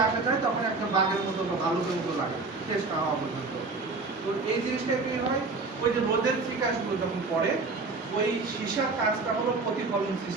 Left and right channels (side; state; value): left; quieter; 3.8 dB